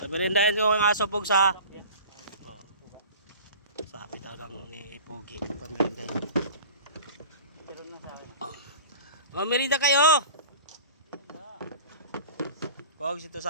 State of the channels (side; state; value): both; inverted; correlation -0.39